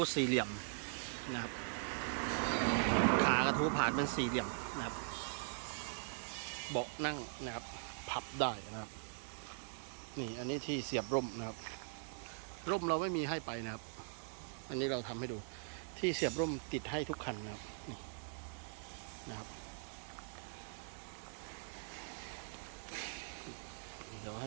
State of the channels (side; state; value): left; silent; digital silence